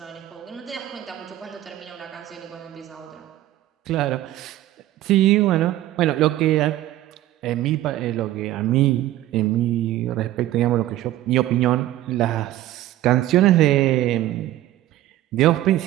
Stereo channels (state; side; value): quieter; left; 14.5 dB